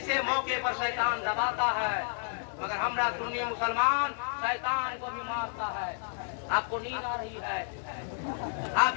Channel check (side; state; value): right; silent; 57 dB below the other